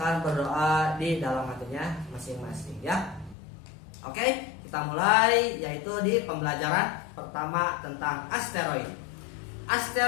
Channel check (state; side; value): drops out; right; at 3.4 s